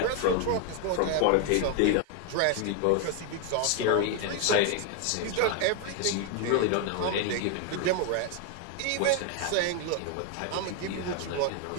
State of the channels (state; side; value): different; both; correlation 0.01